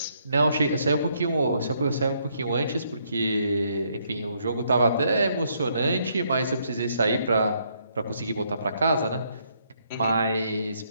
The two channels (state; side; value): inverted; both; correlation -0.72